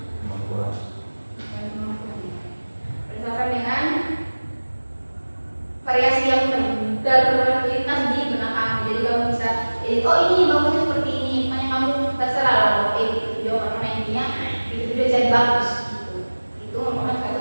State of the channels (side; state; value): both; inverted; correlation -1.00